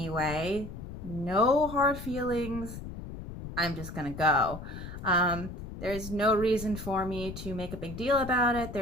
No hard feelings. I'm just gonna go. There's no reason for me to make a big deal about it.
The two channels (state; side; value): noise; left; rumble, 10 dB below the sound